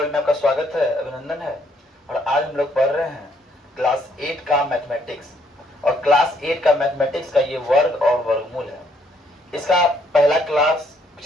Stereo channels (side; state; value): both; normal; correlation 0.69